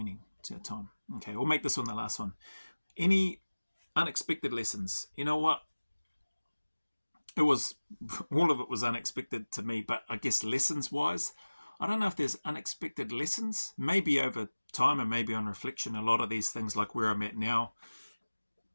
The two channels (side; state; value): both; inverted; correlation -1.00